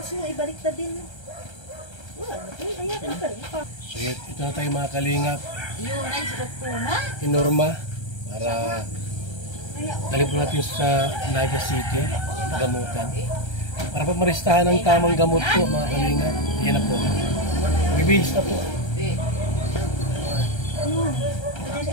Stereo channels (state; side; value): late; right; 1.3 ms